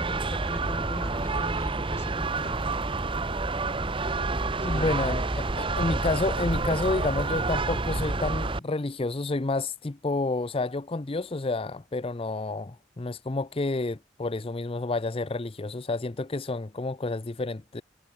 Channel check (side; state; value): both; normal; correlation 0.46